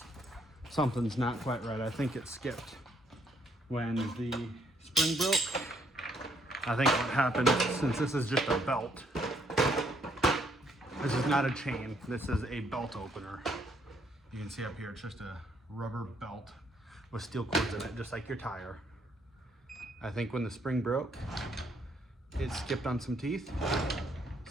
Something's not quite right. I think it skipped when the spring broke. I think what happened, since this is just a belt, this is not a chain, this is a belt opener. You can see up here, it's just a rubber belt with steel cords in it, just like your tire. I think when the spring broke, it skipped on some teeth,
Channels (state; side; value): normal; both; correlation 0.69